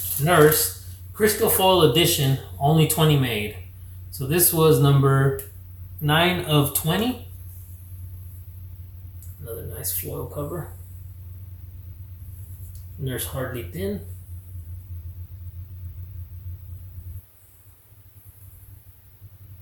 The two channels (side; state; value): both; identical; correlation 1.00